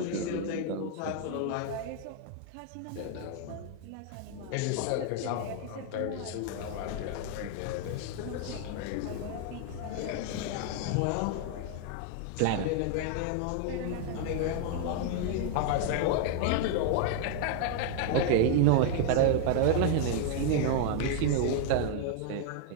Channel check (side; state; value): both; different; correlation 0.00